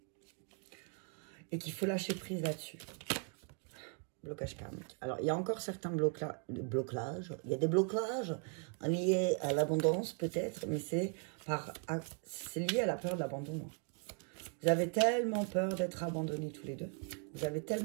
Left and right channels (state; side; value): quieter; left; 39.2 dB